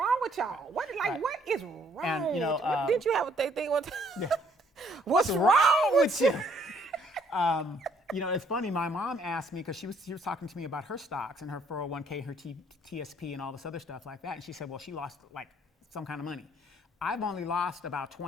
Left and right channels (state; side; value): normal; both; correlation 0.65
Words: with y'all? What is wrong? Didn't you have a thing one time? Yeah. What's wrong with you? It's funny. My mom asked me, because she was talking to me about her stocks and her 401k, her TSP, and all this other stuff like that. And she said, well, she lost like some kind of money. I've only lost about